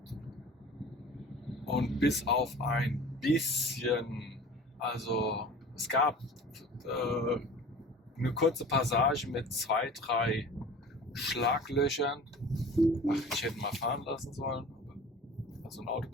Und bis auf ein bisschen, also es gab eine kurze Passage mit 2, 3 Schlaglöchern. Ach, ich hätte mal fahren lassen sollen. Also ein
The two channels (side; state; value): both; normal; correlation 0.41